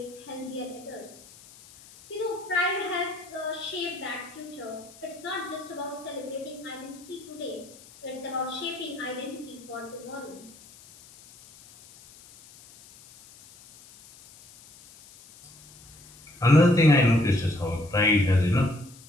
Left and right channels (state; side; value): noise; left; hiss, 22 dB below the sound